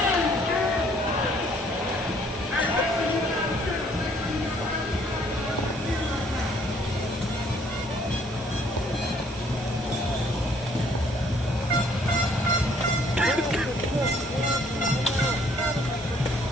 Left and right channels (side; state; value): both; normal; correlation 0.62